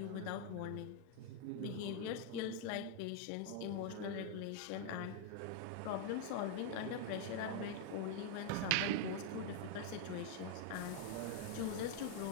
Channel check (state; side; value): different; both; correlation 0.00